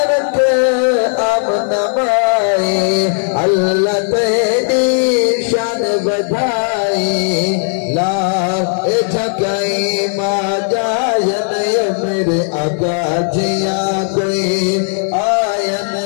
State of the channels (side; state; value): right; silent; 58 dB below the other